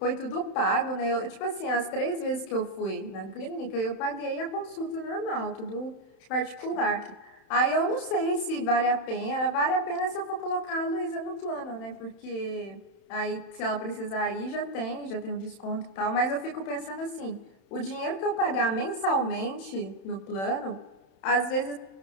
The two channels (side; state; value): right; late; 31 ms